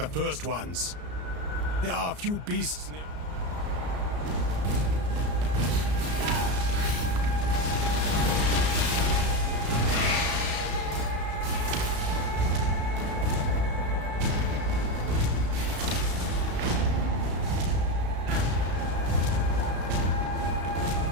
first ones. There are a few beasts near.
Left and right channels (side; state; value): left; late; 34 ms